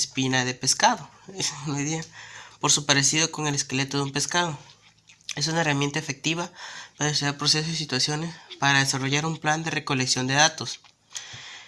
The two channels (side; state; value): both; identical; correlation 1.00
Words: de pescado, por su parecido con el esqueleto de un pescado. Es una herramienta efectiva para estudiar procesos y situaciones para desarrollar un plan de recolección de datos.